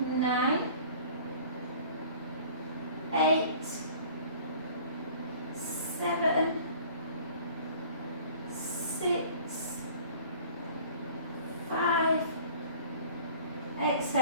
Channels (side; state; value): both; inverted; correlation -0.48